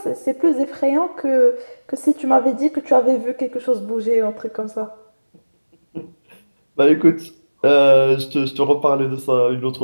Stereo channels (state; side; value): inverted; both; correlation -1.00